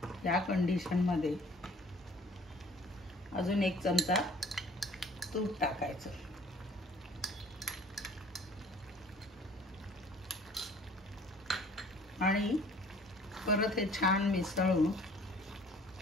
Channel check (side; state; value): both; normal; correlation 0.53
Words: या कंडिशनमध्ये अजून 1 चमचा तूप टाकायचं आणि परत हे छान मिसळून,